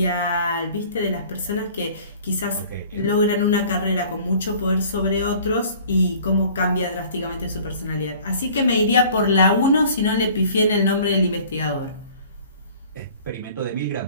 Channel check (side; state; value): both; inverted; correlation -0.49